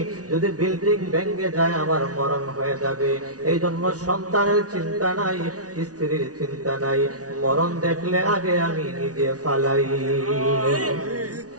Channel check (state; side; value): late; left; 0.68 ms